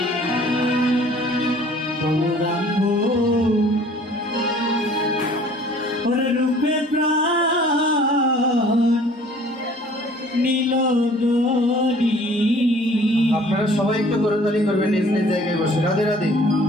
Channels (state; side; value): normal; both; correlation 0.53